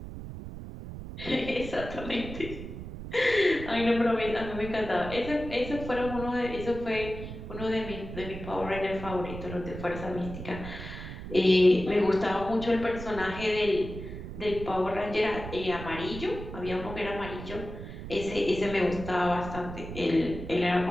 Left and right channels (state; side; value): noise; right; rumble, 10 dB below the sound